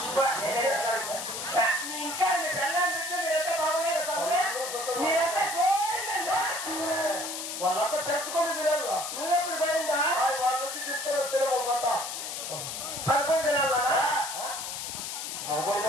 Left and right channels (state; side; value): noise; left; hiss, 6 dB below the sound